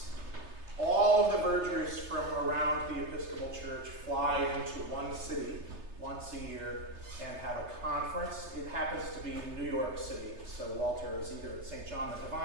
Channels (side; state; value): left; late; 3.3 ms